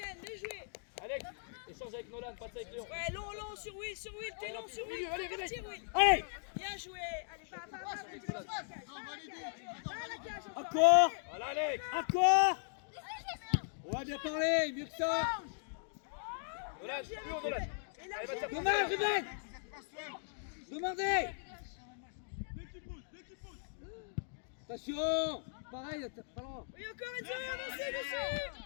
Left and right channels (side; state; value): right; silent; digital silence